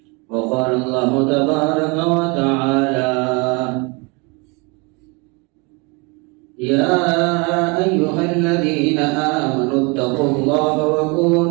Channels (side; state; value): left; quieter; 29.6 dB